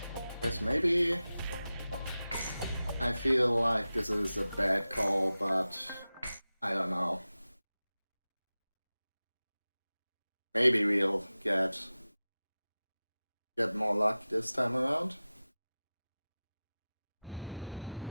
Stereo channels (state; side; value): inverted; both; correlation -0.96